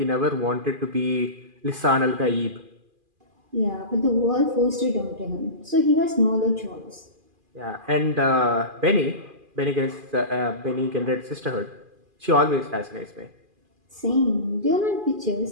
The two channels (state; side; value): late; left; 2.4 ms